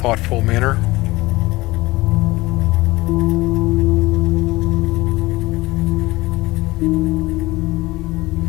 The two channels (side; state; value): right; quieter; 20.1 dB